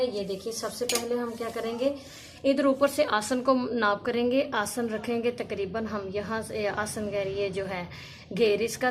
ये देखिए, सबसे पहले हम क्या करेंगे, इधर ऊपर से आसन को नाप करेंगे। आसन रखेंगे तकरीबन हम यहाँ से, आसन घेर ये जो है घेर इसका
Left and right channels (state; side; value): identical; both; correlation 1.00